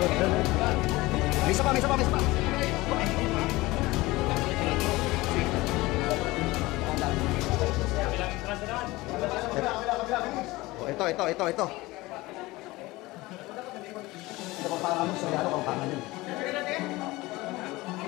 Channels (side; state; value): right; quieter; 20.3 dB